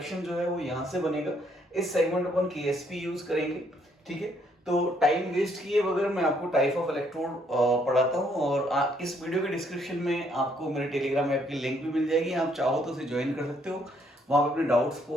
जो है वो यहाँ से बनेगा। इस सेगमेंट अपन केएसपी यूज करेंगे, ठीक है। तो टाइम वेस्ट किए बगैर मैं आपको टाइप ऑफ इलेक्ट्रोड पढ़ाता हूँ, और इस वीडियो के डिस्क्रिप्शन में आपको मेरे टेलीग्राम ऐप की लिंक भी मिल जाएगी। आप चाहो तो उसे ज्वाइन कर सकते हो, वहाँ पे अपने डाउट्स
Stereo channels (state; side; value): normal; both; correlation 0.69